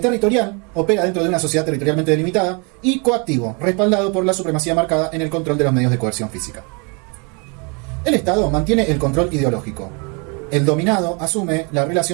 opera dentro de una sociedad territorialmente delimitada. Y coactivo, respaldado por la supremacía marcada en el control de los medios de coerción física. El Estado mantiene el control ideológico. El dominado asume la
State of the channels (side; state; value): left; quieter; 32.8 dB